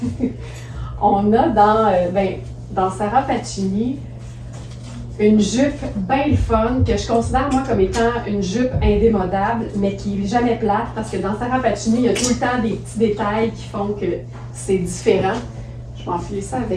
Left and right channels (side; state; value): both; identical; correlation 1.00